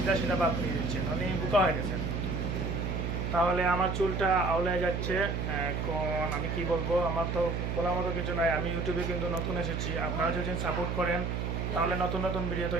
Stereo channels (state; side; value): noise; right; hum, 1 dB below the sound